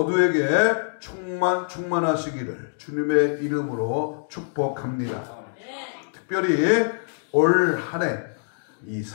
충만하시기를 주님의 이름으로 축복합니다. 특별히 올 한 해 이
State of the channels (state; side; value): silent; right; digital silence